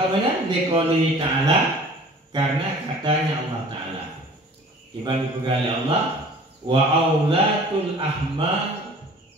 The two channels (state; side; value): normal; both; correlation 0.47